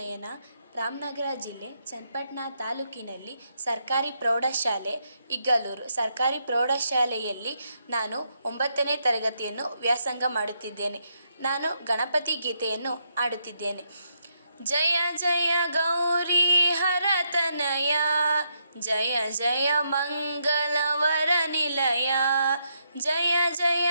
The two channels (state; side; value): inverted; both; correlation -0.79